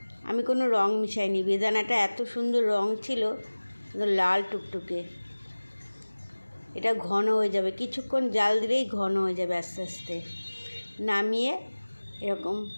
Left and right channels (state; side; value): inverted; both; correlation -1.00